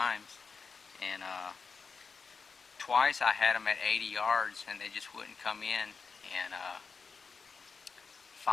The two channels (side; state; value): right; quieter; 5.1 dB